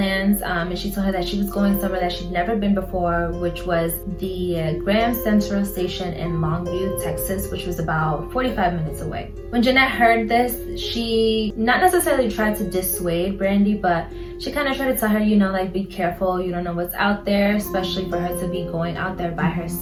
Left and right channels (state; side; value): identical; both; correlation 1.00